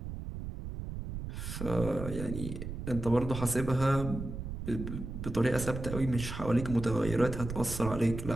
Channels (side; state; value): right; noise; rumble, 7 dB below the sound